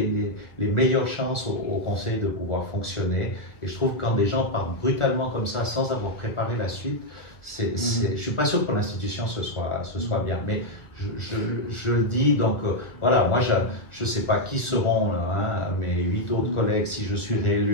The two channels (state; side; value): late; right; 1.5 ms